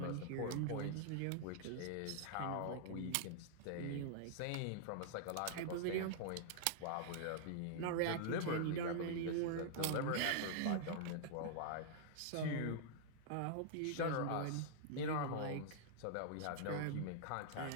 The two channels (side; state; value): both; different; correlation -0.01